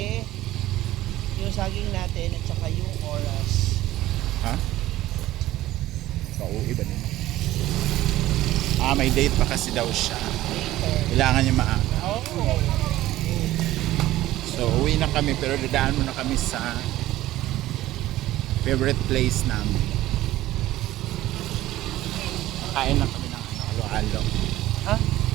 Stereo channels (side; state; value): left; quieter; 15.4 dB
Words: yung saging natin at saka yung oras. Ha? Pauwi ba nila? May date pa kasi daw siya. Kailangan niya maaga. Oh. So uwi na kami pero dadaan muna kami sa favorite place namin. Kain na kami ng halo-halo. Ha?